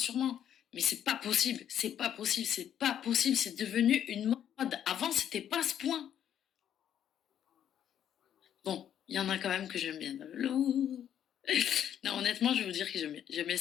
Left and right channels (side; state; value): right; quieter; 9.9 dB